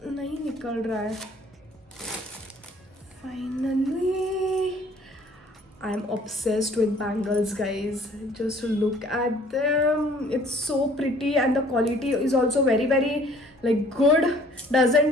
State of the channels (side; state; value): both; normal; correlation 0.55